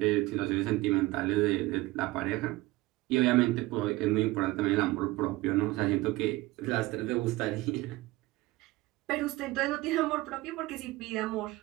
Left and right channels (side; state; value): left; quieter; 19.8 dB